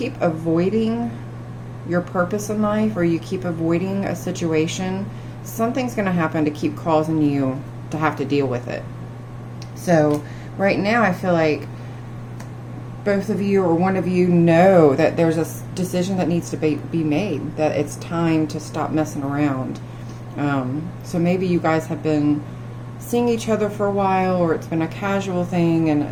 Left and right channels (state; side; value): identical; both; correlation 1.00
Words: avoiding your purpose in life, or you keep avoiding a situation, something's going to happen to keep causing you to have to deal with it. So right now I feel like both of you or one of you know that there's a decision that needs to be made, that it's time to stop messing around. So maybe you guys have been seeing each other for a while, or it's been a casual thing,